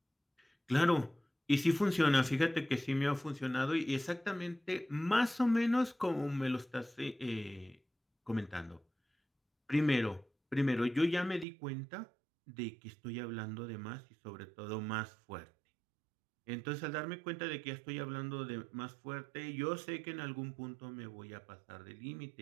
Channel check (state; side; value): drops out; left; at 11.5 s